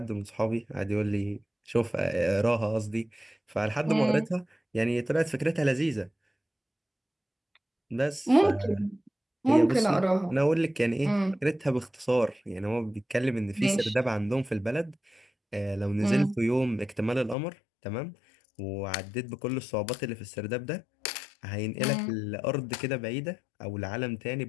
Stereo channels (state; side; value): drops out; right; at 17.4 s